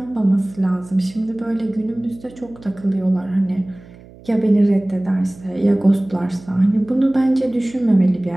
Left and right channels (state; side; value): noise; right; hum, 22 dB below the sound